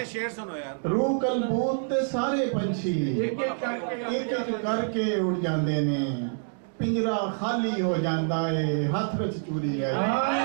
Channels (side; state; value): left; silent; digital silence